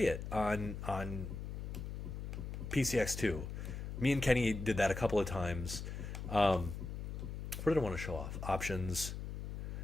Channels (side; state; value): left; noise; hum, 6 dB below the sound